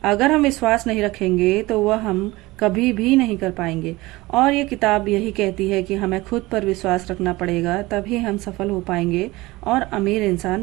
अगर हम विश्वास नहीं रखेंगे तो वह हम कभी भी नहीं कर पाएंगे। और ये किताब यही कहती है कि हमें खुद पर विश्वास रखना पड़ेगा, तभी हम सफल हो पाएंगे और अमीर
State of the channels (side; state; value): left; quieter; 20.4 dB